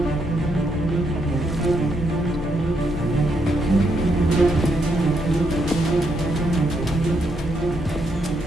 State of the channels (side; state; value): both; normal; correlation 0.77